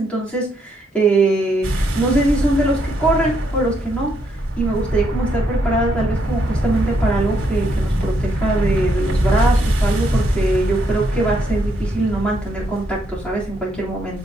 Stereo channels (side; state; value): both; normal; correlation 0.75